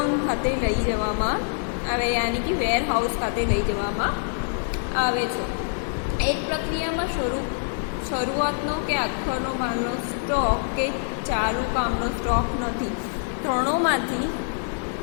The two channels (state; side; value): silent; right; digital silence